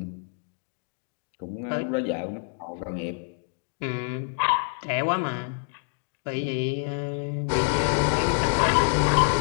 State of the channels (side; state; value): right; silent; digital silence